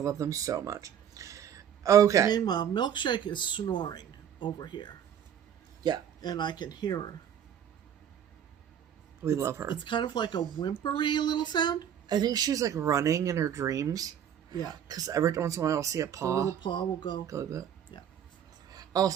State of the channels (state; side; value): quieter; left; 9.2 dB